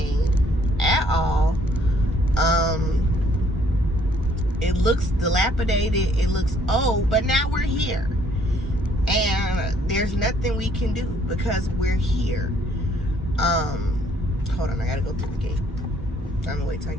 at all. It looks dilapidated, it looks old, but now we're here. And there's nothing we can do because we're here. Hold on, I gotta go through the gate. I'm gonna wait till I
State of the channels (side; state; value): both; normal; correlation 0.64